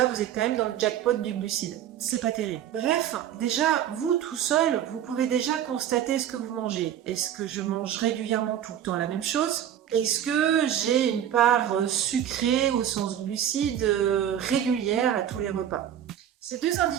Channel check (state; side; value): quieter; left; 10.3 dB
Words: vous êtes quand même dans le jackpot du glucide. C'est pas terrible. Bref, déjà, vous tout seul, vous pouvez déjà constater ce que vous mangez. Est-ce que je mange régulièrement tout le temps la même chose? Est-ce que j'ai une part sucrée au sens glucide régulière à tous les repas? Ces deux